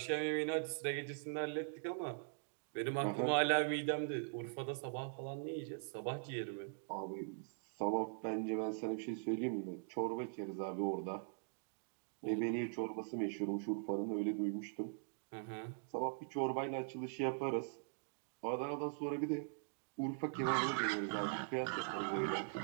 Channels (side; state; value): left; silent; digital silence